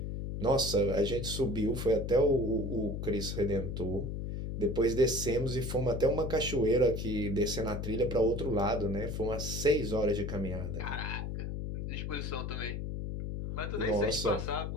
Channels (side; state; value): left; noise; hum, 4 dB below the sound